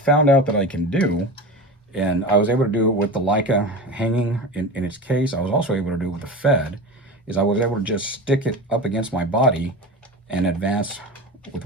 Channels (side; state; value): both; normal; correlation 0.28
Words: out that I can do, and I was able to do it with the Leica hanging in its case, I was also able to do it with the Fed, is I was able to just stick it up against my body and advance with